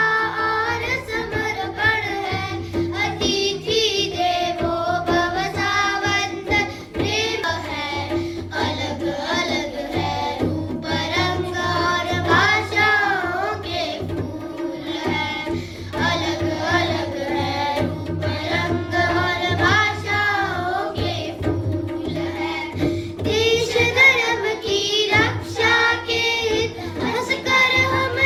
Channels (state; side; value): identical; both; correlation 1.00